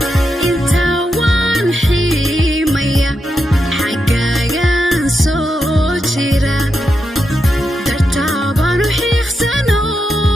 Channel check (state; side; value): normal; both; correlation 0.85